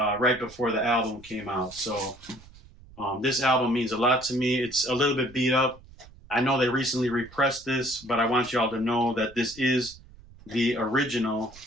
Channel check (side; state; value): right; noise; rumble, 22 dB below the sound